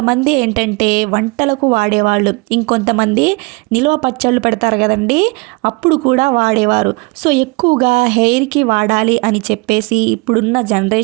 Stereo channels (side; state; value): left; quieter; 27.6 dB